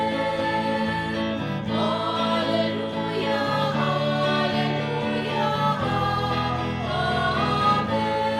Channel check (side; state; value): both; identical; correlation 1.00